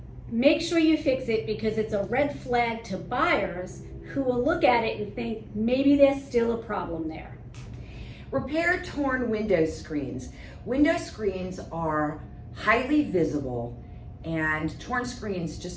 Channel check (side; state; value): both; identical; correlation 1.00